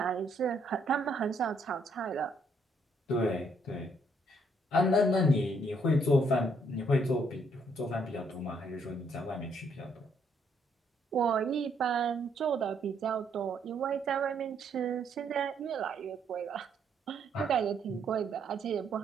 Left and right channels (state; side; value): normal; both; correlation 0.70